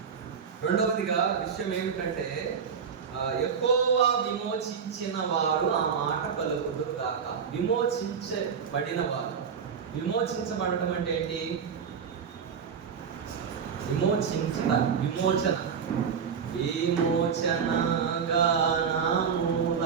రెండవదిగా విషయం ఏమిటంటే, యెహోవా విమోచించిన వారు ఆ మాట పలుకుదురు గాక. విమోచించబడిన వారు. విమోచించబడటం అంటే ఏంటి? విమోచన విమోచన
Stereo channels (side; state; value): left; quieter; 6.7 dB